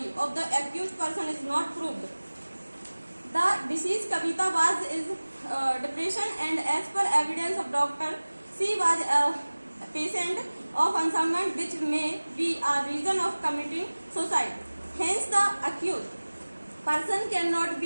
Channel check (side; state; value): both; inverted; correlation -1.00